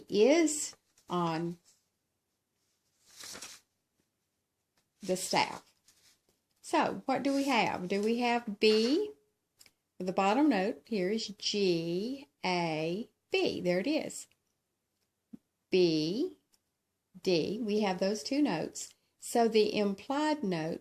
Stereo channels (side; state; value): both; identical; correlation 1.00